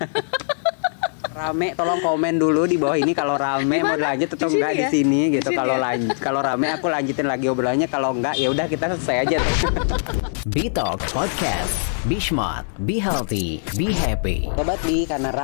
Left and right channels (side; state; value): right; silent; digital silence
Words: Rame, tolong komen dulu di bawah ini kalau rame mau lanjut atau enggak di sini gitu. Kalau rame aku lanjutin lagi obrolannya, kalau enggak ya udah kita selesai aja. Bitalk Podcast. Be smart, be healthy, be happy. Sobat Bi, karena